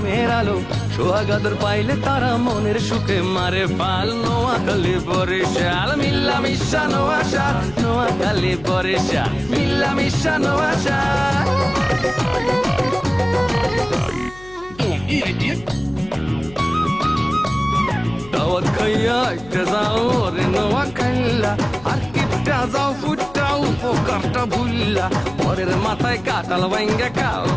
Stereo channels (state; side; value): noise; left; hum, 20 dB below the sound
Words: আলো সোহাগাদর পাইলে তারা মনের সুখে মারে পাল নোয়াখালী বরিশাল মিল্লা মিশা নোয়াশাল নোয়াখালী বরিশাল মিল্লা মিশা নোয়াশাল দাওয়াত খাইয়া একটা যাও রে নোয়াখাইলা আর কিপটা যাও ফুটাও পোকারটা ভুললা পরের মাথায় কাটাল ভাঙ্গা খাও